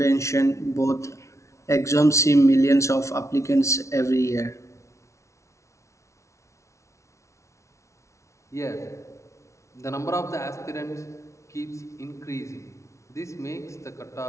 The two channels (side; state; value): right; late; 0.14 ms